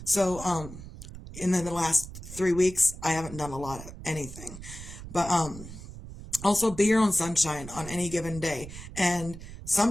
So, in the last 3 weeks, I haven't done a lot of anything, but, also be your own sunshine on any given day. And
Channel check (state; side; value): noise; right; rumble, 13 dB below the sound